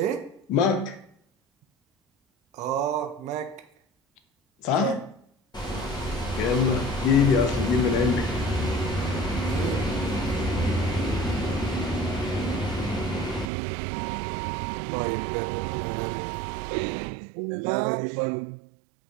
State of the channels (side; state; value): left; drops out; at 13.5 s